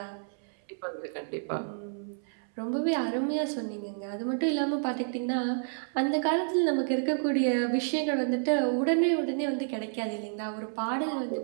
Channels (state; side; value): silent; left; 58 dB below the other